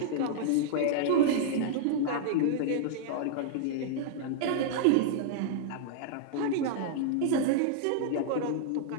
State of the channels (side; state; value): both; different; correlation -0.01